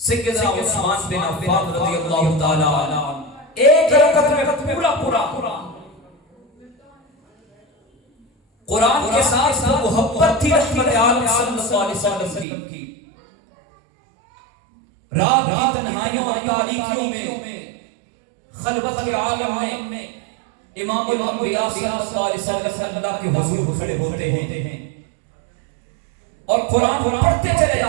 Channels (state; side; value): drops out; left; at 12.5 s